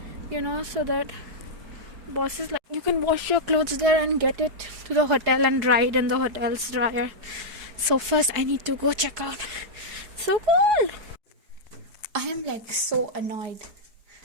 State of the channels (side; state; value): left; late; 4.8 ms